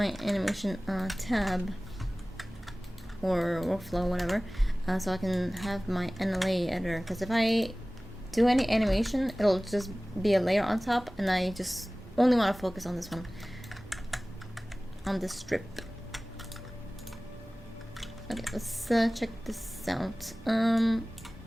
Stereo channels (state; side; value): normal; both; correlation 0.98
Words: animation tab or workflow, whatever, so I can have my NLA editor. Because if I do any animation, it'll just be a layer on top, and I just only want to focus on this one, on this strip. Okay, let's check this out.